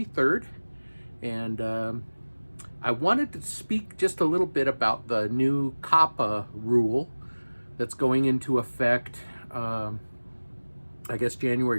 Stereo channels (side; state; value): both; inverted; correlation -1.00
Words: and I wanted to speak just a little bit about the new COPPA rule that's going into effect, I guess